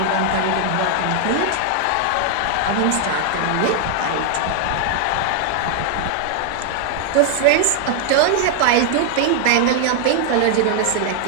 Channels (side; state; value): both; different; correlation 0.00